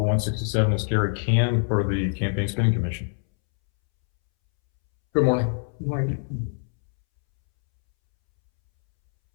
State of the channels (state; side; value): silent; right; 63 dB below the other